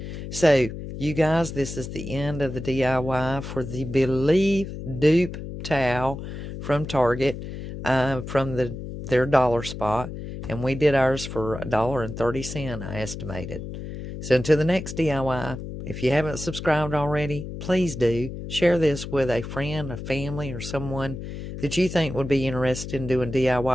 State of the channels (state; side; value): noise; left; hum, 9 dB below the sound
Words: So you guys, this is the end of the DIY for the Believe Dupe towel from Target, from their dollar spot. And we did ours for $1.30, I estimated. So until the next DIY, if you haven't subscribed already, please do. Share this with a friend, a family, or someone that you think would be interested in doing